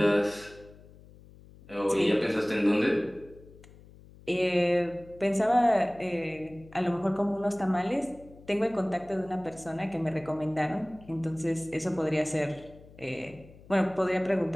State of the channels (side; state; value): left; noise; hum, 22 dB below the sound